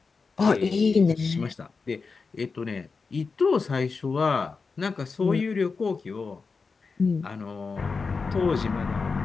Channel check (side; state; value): right; quieter; 4.7 dB